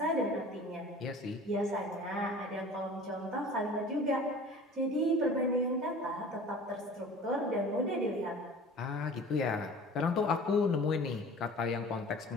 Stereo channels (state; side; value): normal; both; correlation 0.43